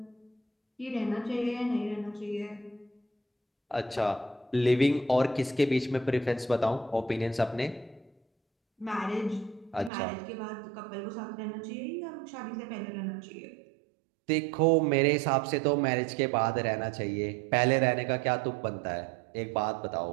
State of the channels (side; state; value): left; drops out; at 9.9 s